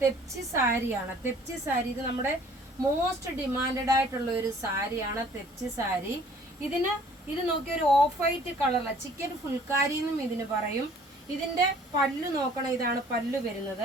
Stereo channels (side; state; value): both; normal; correlation 0.55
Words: സാരിയാണ്. തെപ്ചി സാരി ഇത് നമ്മുടെ മോസ്റ്റ് ഡിമാൻഡഡ് ആയിട്ടുള്ള ഒരു സാരിയാണ് തെപ്ചി സാരി. ഇത് നോക്കിയ ഒരു ഓഫ് വൈറ്റ് കളറില ചിക്കൻ ഫുൾക്കാരി എന്നും ഇതിന് പറയും. ഇതിന്റെ പല്ലു നോക്കണം, ഇതാണ് പല്ലു